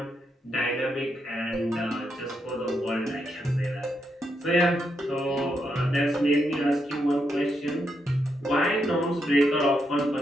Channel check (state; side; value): normal; both; correlation 0.81